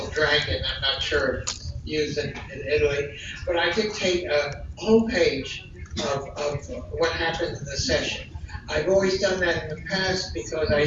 Dragon. I'm not sure if it's used in Italy, but I dictate a whole page of what happened in the session. I've always done that in the past because I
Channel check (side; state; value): both; identical; correlation 1.00